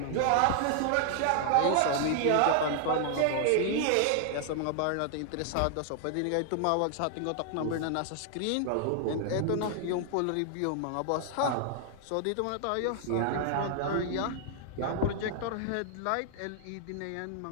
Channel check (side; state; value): both; different; correlation 0.00